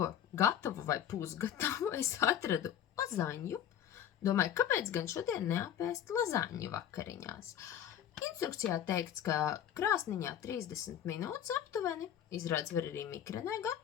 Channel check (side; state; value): right; quieter; 10.0 dB